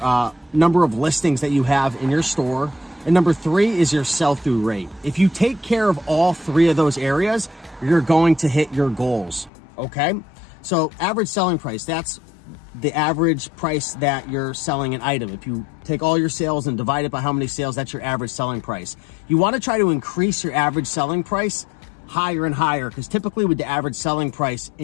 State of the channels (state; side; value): drops out; right; at 9.5 s